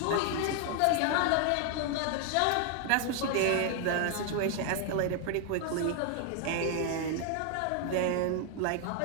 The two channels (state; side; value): different; both; correlation 0.00